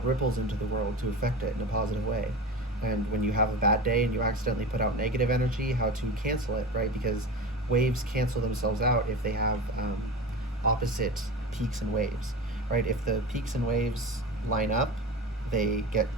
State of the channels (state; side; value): normal; both; correlation 0.29